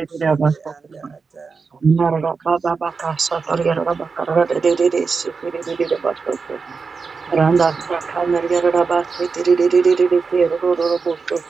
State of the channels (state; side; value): quieter; left; 4.9 dB